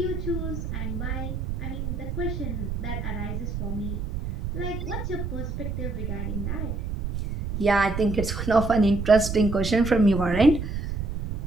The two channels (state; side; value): noise; right; rumble, 3 dB below the sound